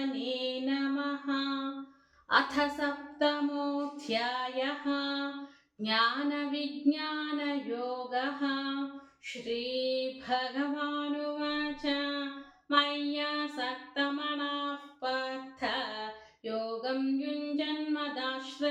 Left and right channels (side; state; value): both; identical; correlation 1.00